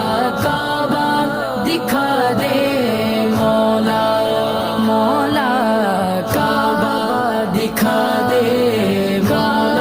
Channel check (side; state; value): both; identical; correlation 1.00